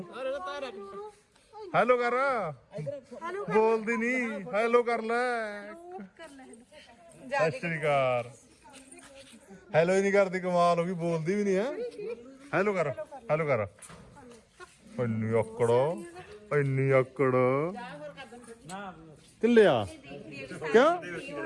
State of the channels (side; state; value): both; identical; correlation 1.00